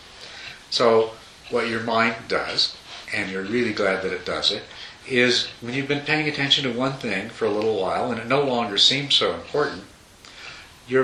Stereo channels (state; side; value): identical; both; correlation 1.00